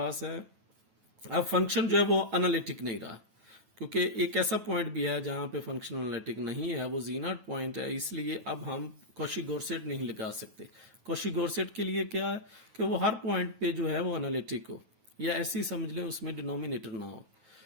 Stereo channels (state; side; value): late; left; 9.2 ms